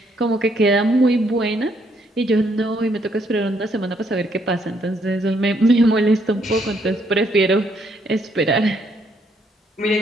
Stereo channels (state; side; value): normal; both; correlation 0.71